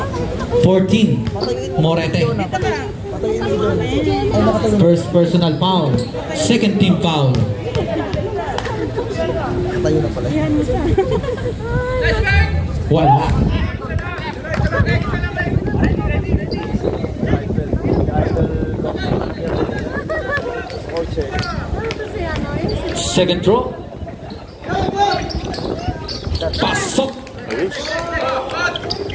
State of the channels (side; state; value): both; identical; correlation 1.00